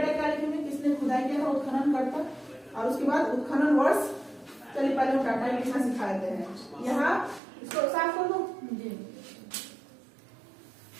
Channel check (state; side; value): drops out; left; at 7.4 s